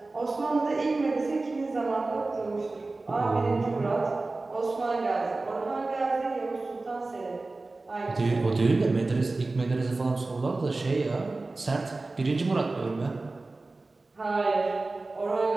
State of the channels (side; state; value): left; quieter; 3.3 dB